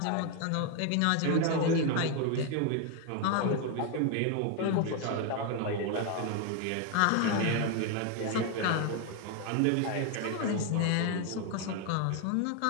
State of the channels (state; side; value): different; both; correlation 0.01